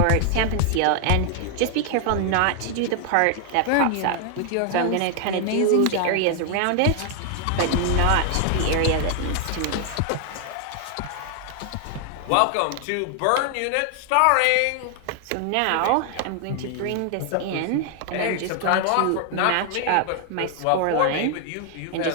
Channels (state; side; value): different; both; correlation 0.00